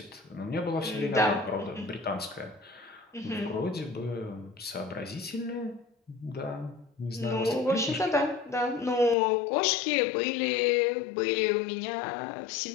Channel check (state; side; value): drops out; right; at 9.2 s